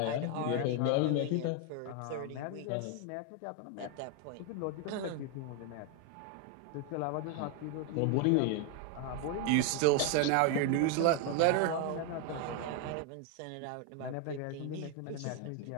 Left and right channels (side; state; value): both; different; correlation 0.01